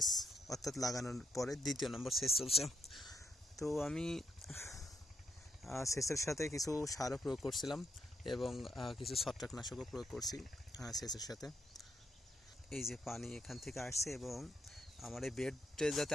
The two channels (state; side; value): normal; both; correlation 0.80